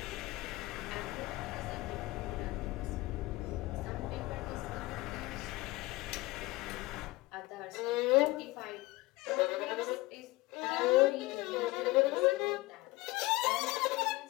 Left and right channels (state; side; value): quieter; right; 20.9 dB